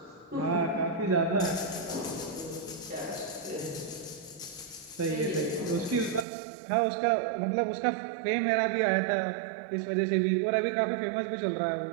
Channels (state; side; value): drops out; left; at 6.2 s